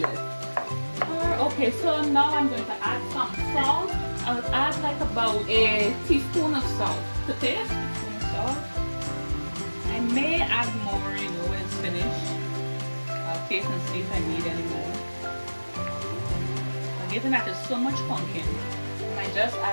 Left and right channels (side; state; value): both; inverted; correlation -1.00